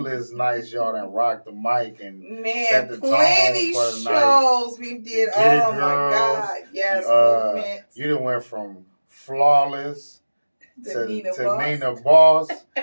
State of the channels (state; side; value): inverted; both; correlation -1.00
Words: y'all done rock the mic and set the tone for the shows we did. Oh my God, yes, movement. You done went from Flawless to Nina Boss,